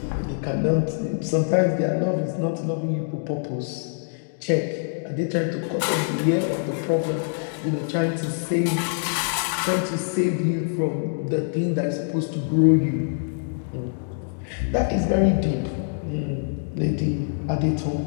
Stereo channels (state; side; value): silent; right; digital silence